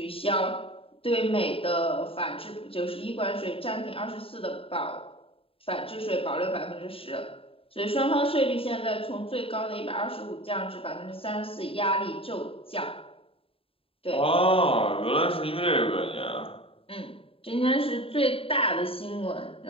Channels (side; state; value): right; late; 0.27 ms